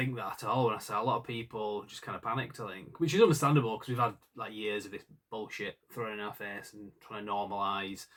that at all when I saw a lot of people just kind of panicked, I think, which is understandable because we've had like years of this bullshit thrown in our face and trying to normalise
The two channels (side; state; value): both; identical; correlation 1.00